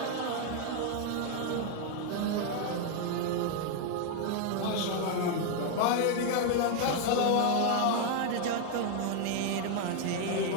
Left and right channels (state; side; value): different; both; correlation 0.01